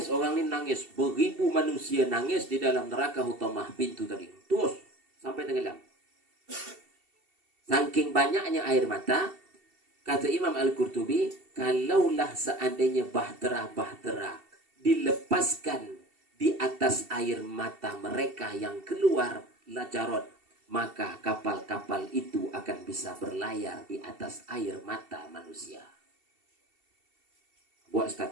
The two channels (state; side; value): late; left; 2.7 ms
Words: Beribu manusia nangis di dalam neraka hutamah pintu tadi. Terus sampai tenggelam. Saking banyaknya air mata, kata Imam Al-Qurtubi, kalaulah seandainya bahtera dilepaskan di atas air mata mereka yang keluar lajarot, maka kapal-kapal itu akan bisa berlayar di atas air mata manusia. Buat